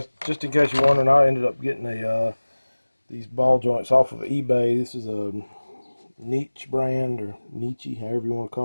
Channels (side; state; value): both; inverted; correlation -1.00